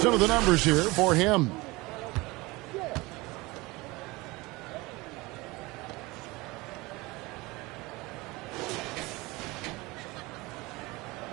of the numbers here for him.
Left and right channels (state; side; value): quieter; left; 22.6 dB